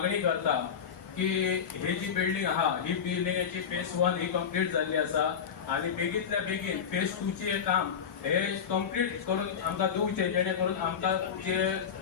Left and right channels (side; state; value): right; quieter; 7.4 dB